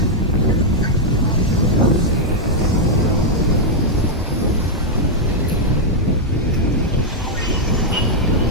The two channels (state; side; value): normal; both; correlation -0.02